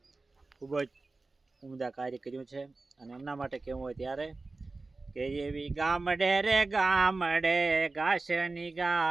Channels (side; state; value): left; quieter; 3.5 dB